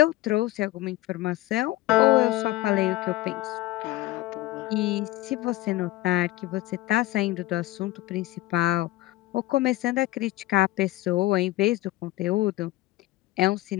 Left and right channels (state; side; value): quieter; right; 17.5 dB